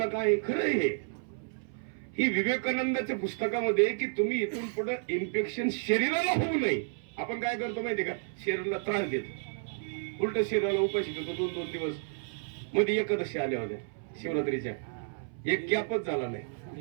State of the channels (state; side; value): silent; left; 57 dB below the other